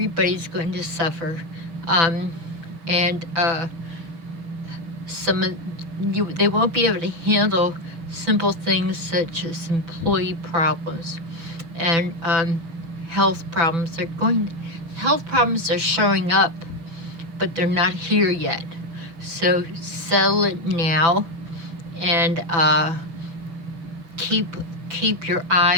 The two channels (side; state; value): left; late; 6.0 ms